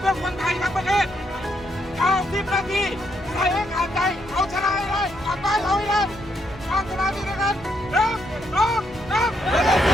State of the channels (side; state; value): both; normal; correlation 0.76